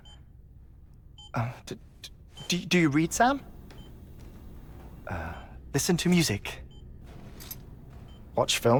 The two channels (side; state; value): both; identical; correlation 1.00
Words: Do you read, Sam? Listen to music. Watch